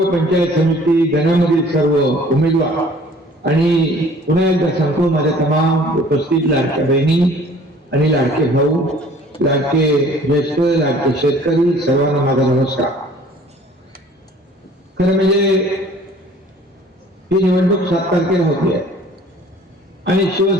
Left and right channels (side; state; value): both; normal; correlation 0.52